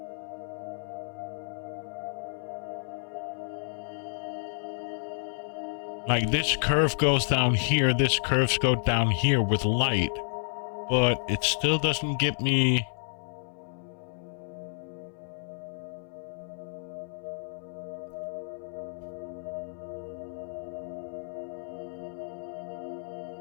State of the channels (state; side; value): silent; right; 58 dB below the other